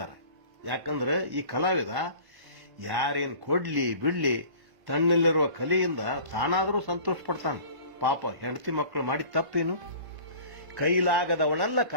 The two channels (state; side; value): late; left; 1.1 ms